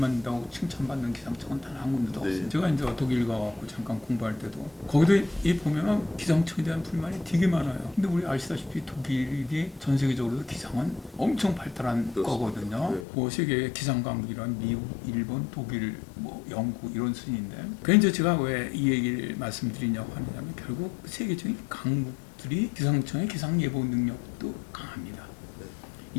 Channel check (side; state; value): right; drops out; at 13.1 s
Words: 칭찬받는 기상청은 단 한 군데도 네. 없어요. 제가 이제 독일 가고 잠깐 공부할 때도 거기도 이 보면은 기상청에 대한 불만이 되게 많아요. 근데 우리 아시다시피 독일이 전 세계적으로 기상은 엄청 발달한 그렇습니다. 거거든요. 네. 뭐 세계 기상 강국이란 미국, 일본, 독일, 뭐 영국 이런 순인데. 그래서 제가 왜 이 얘기를 말씀드리냐고 하느냐면 결국 세계적인 강국들이 기상청의 기상 예보 능력도 강합니다. 네.